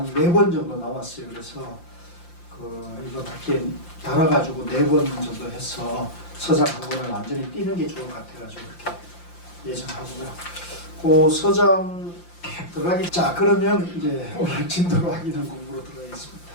4번 정도 남았어요. 그래서 이번 학기에 달아가지고 4번 정도 해서 서장 한 권을 완전히 띄는 게 좋을 것 같아가지고 이렇게 예정하고요. 그 서장 들어가기. 자, 그러면 이제 오늘 진도로 하기는 공부로 들어가겠습니다.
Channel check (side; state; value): right; late; 5.8 ms